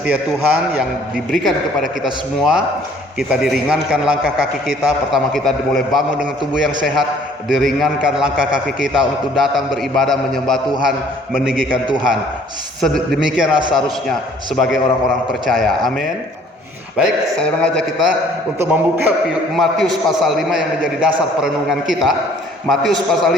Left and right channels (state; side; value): normal; both; correlation 0.57